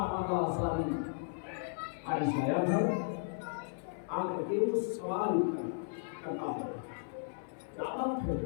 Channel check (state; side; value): silent; right; 54 dB below the other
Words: ماگا ساری حارث آیا گھر آ کر کے اس سوال کرتا ہے، کیا بات ہے؟